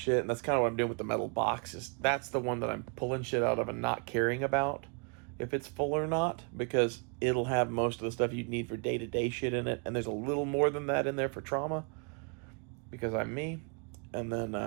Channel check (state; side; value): quieter; left; 36.7 dB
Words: and that's kind of what I'm doing with the metal boxes, that's the one that I'm pulling shit out of and not caring about if it's full or not, because it'll have most of the stuff you need for day-to-day shit in it, and there's a little more than that in there for trauma, because I'm me. And then